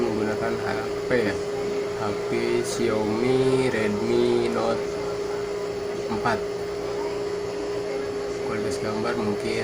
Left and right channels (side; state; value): both; identical; correlation 1.00